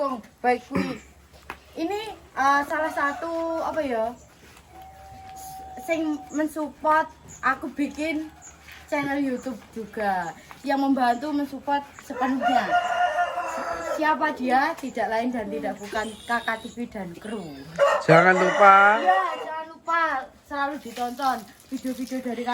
baik kui. Ini salah satu apa ya? Sing mensupport aku bikin channel YouTube juga. Yang membantu mensupport sepenuhnya. Siapa dia? Tidak lain dan tidak bukan Kakak TV dan kru. Jangan lupa Ya, jangan lupa selalu ditonton video-video dari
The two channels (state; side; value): identical; both; correlation 1.00